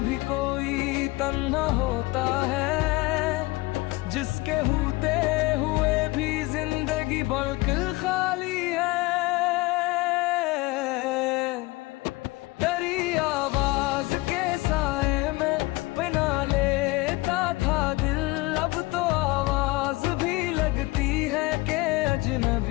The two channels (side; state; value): right; quieter; 21.7 dB